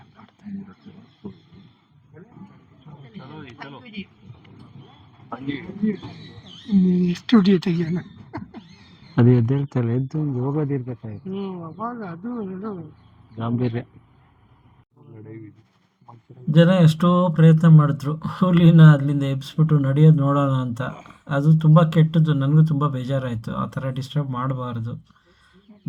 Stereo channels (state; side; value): identical; both; correlation 1.00